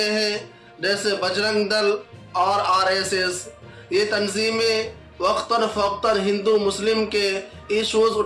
हैं जैसे बजरंग दल और आरएसएस। ये तंजीमें वक्तन फ़वक्तन हिंदू मुस्लिम के इशूज़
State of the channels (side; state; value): both; identical; correlation 1.00